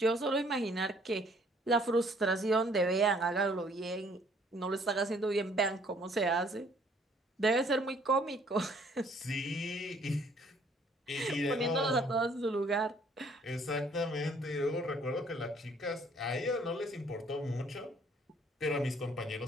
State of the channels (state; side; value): normal; both; correlation 0.61